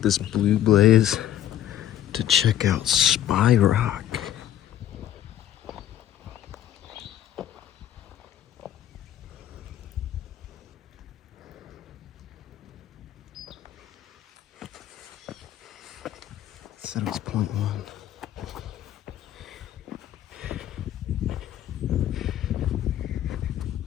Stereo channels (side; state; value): right; quieter; 11.6 dB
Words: this blue blaze to check out Spy Rock. Said it was 0.1.